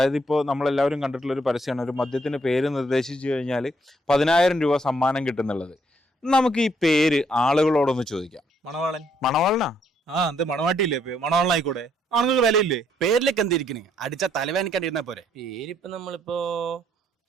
ഇപ്പോൾ നമ്മളെല്ലാവരും കണ്ടിട്ടുള്ള ഒരു പരസ്യമാണ്, ഒരു മദ്യത്തിന് പേര് നിർദ്ദേശിച്ചു കഴിഞ്ഞാൽ 10,000 രൂപ സമ്മാനം കിട്ടുന്നുള്ളത്. നമുക്ക് ഈ പേര് ആളുകളോടൊന്ന് ചോദിക്കാം. മണവാളൻ. മണവാളനാ? എന്ത് മണവാട്ടിയില്ലേ? മണവാളനായിക്കോട്ടെ, ആണുങ്ങൾക്ക് വിലയില്ലേ? പേരിലേക്ക് എന്തിരിക്കണേ? അടിച്ച തലവേനിക്കണ്ടിരുന്നാ പോരെ. പേരിപ്പോ നമ്മളിപ്പോ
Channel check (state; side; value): normal; both; correlation 0.70